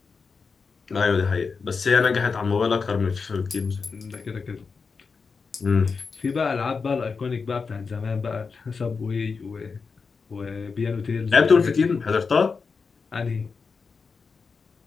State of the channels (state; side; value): quieter; right; 5.0 dB